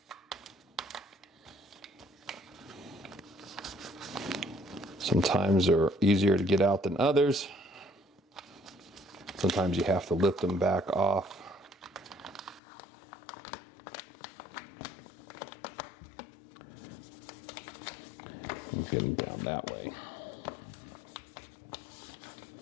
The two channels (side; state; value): right; drops out; at 12.6 s